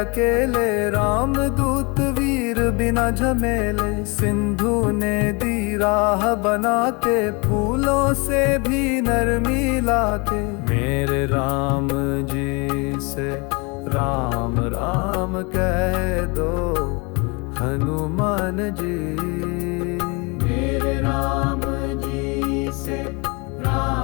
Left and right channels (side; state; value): right; quieter; 29.8 dB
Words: राम दूत वीर बिना झमेले। सिंधु ने दी राह बना के, फूलों से भी नरमी लाके। मेरे राम जी से राम राम कह दो हनुमान जी। मेरे राम जी से